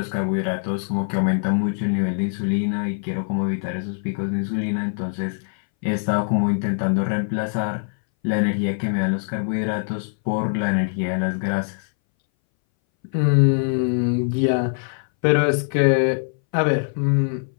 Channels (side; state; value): right; silent; 61 dB below the other